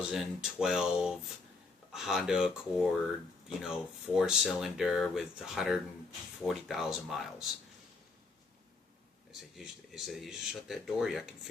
Honda Accord, 4-cylinder with 140,000 miles. He said, you just shut that door, I can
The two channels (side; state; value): right; quieter; 4.0 dB